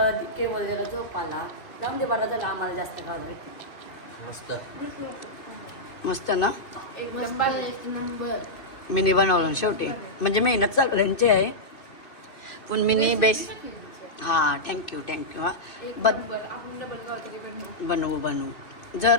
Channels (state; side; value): late; right; 2.6 ms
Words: केवळ जरा झोपाला जाऊन दे, बरा झाला. आम्हाला जास्त खावं मस्त मस्त ना. मस्त एक नंबर. मिनी बनवलं शेवटी, म्हणजे मेहनत सगळ्यांची आहे पण मिनी बेस्ट. हा थँक्यू हा. बनवू